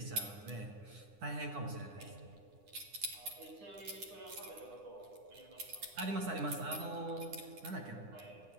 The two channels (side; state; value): left; late; 9.9 ms